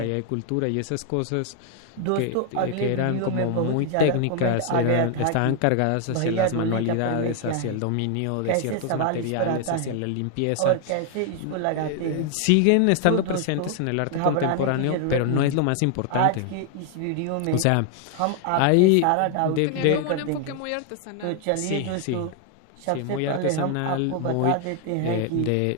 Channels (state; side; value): different; both; correlation 0.00